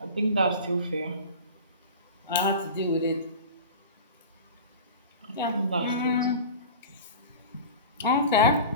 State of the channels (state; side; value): inverted; both; correlation -0.34